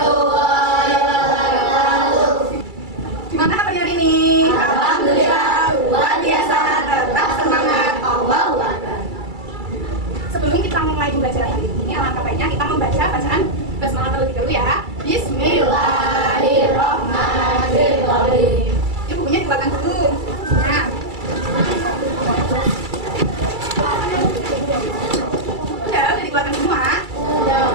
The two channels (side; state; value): left; late; 2.3 ms